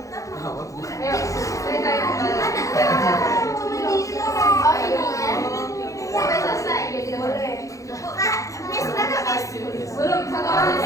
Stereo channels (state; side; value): late; right; 0.16 ms